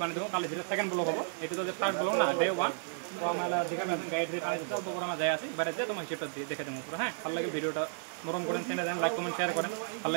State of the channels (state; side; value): silent; left; digital silence